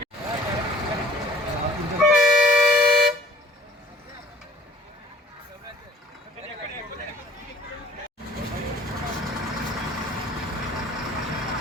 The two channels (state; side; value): normal; both; correlation 0.53